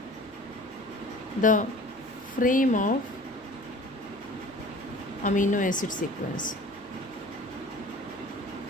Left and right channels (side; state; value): right; noise; rumble, 29 dB below the sound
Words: the frame of amino acid sequence.